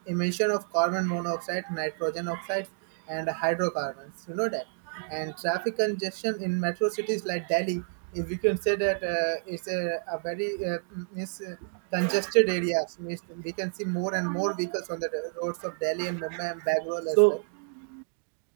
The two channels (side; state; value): left; silent; digital silence